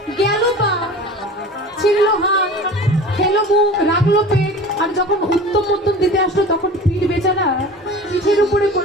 গেল পা, ছিঁড়লো হাত, খেলো মুখ, রাখলো পেট, আর যখন উত্তম মধ্যম দিতে আসলো তখন পিঠ বেচারা পিঠের উপরে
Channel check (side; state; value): both; normal; correlation 0.38